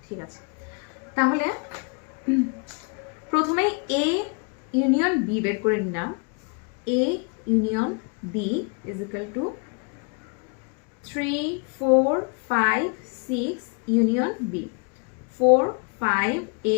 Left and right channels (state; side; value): quieter; right; 35.3 dB